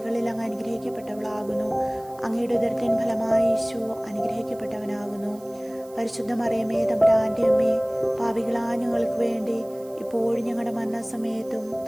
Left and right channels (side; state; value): right; noise; hiss, 25 dB below the sound